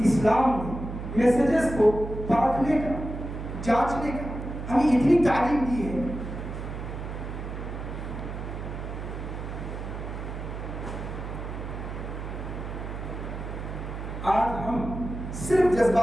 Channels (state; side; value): noise; right; hum, 7 dB below the sound